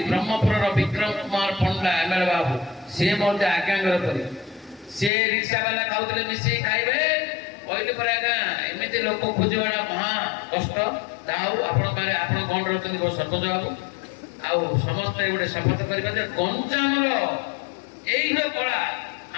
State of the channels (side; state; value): right; drops out; at 5.1 s